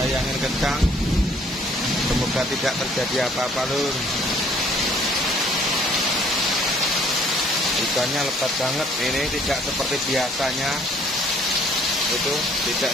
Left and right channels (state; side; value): normal; both; correlation 0.60